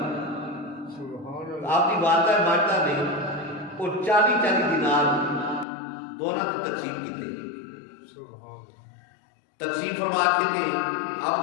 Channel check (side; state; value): right; drops out; at 5.7 s